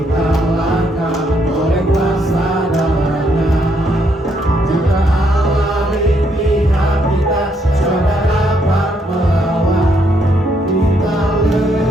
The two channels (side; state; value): both; normal; correlation 0.73